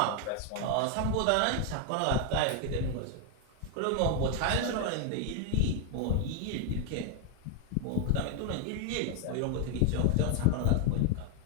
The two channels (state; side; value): different; both; correlation 0.00